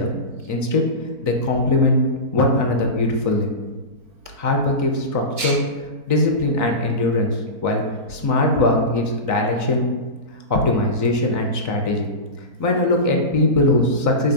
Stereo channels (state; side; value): late; left; 4.4 ms